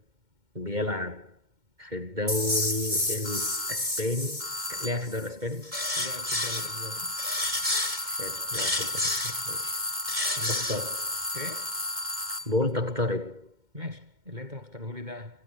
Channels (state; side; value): late; left; 2.1 ms